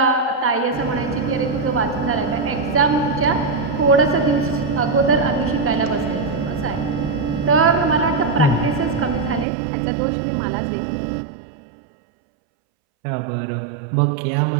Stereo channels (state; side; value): drops out; left; at 9.5 s